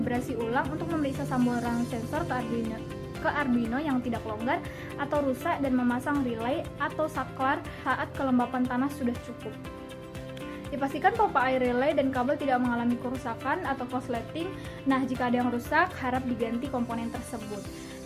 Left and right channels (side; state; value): both; identical; correlation 1.00